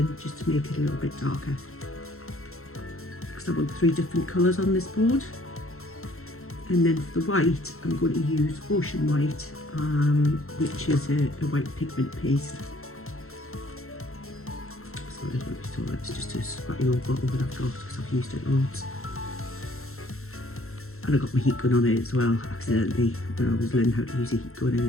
just to make it a little bit darker, because I want 3 different colours on this board. And then for the white, I'm going to use Ocean White, which is a white pigment paste. Sorry, I don't know if you saw that, it's just a spatty old bottle that I've got because I've used it loads. And I got my heat gun on it as well, accidentally, when I was learning how to use a heat gun,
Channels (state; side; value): late; right; 0.62 ms